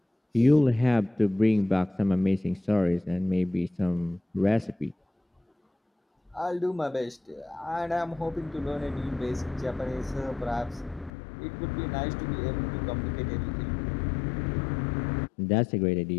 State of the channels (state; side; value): drops out; right; at 11.1 s